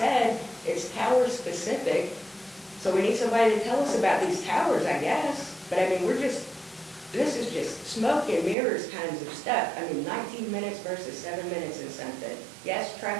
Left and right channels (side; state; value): left; drops out; at 8.6 s